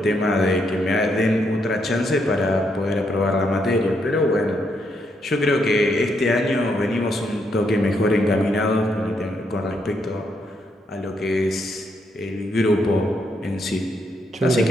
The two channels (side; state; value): both; normal; correlation 0.77